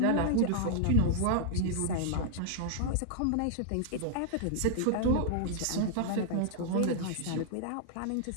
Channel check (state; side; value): different; both; correlation -0.01